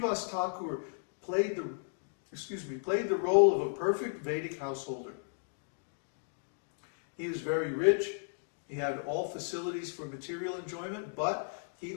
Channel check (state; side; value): silent; right; digital silence